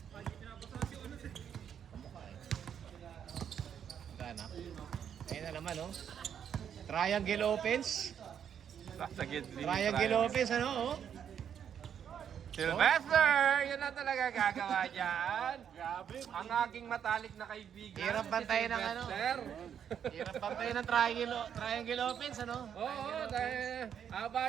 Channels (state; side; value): quieter; left; 8.5 dB